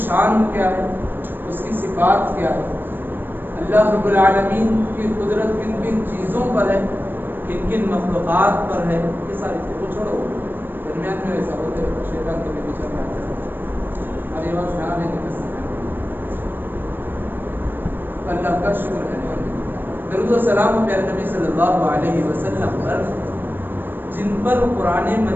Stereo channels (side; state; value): left; late; 0.094 ms